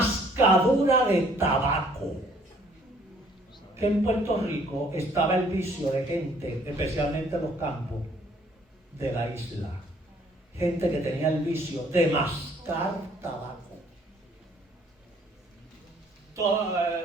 de tabaco. Que en Puerto Rico estaba el vicio de gente, especialmente en los campos de la isla. Gente que tenía el vicio de mascar tabaco.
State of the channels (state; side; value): normal; both; correlation 0.61